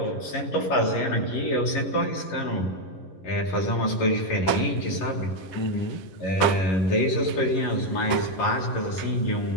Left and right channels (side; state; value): right; late; 11 ms